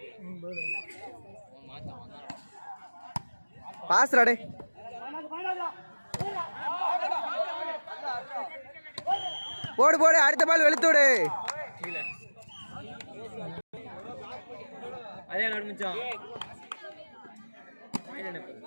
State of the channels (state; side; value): inverted; both; correlation -1.00